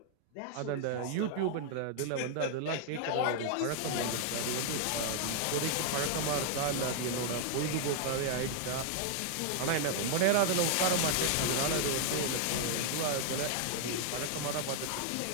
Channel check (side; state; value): both; different; correlation 0.00